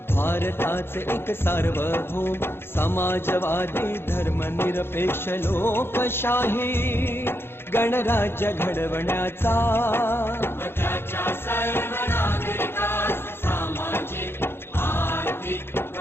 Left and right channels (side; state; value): right; late; 0.11 ms